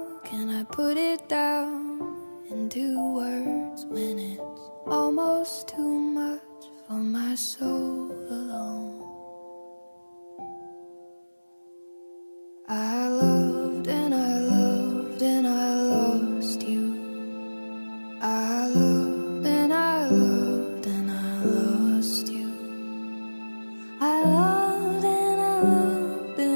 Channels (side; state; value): both; inverted; correlation -1.00